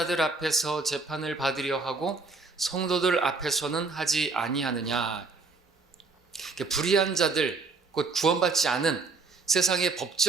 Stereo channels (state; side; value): quieter; left; 4.1 dB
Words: 앞에서 재판을 받으려 하고 성도들 앞에서는 하지 아니하느냐. 불의한 자들, 곧 구원받지 않은 세상의